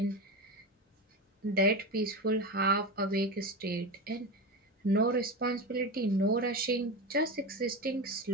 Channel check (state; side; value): normal; both; correlation 0.21